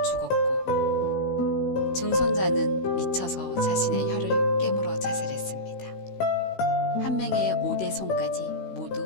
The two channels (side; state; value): right; late; 16 ms